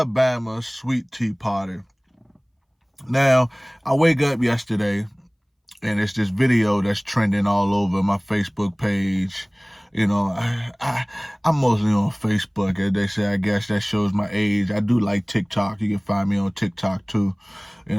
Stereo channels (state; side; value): identical; both; correlation 1.00